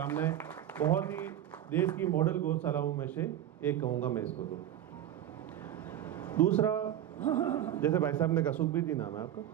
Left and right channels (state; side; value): quieter; left; 11.4 dB